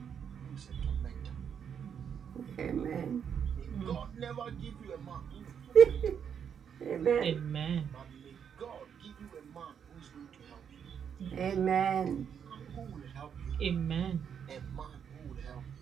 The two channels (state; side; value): quieter; left; 7.8 dB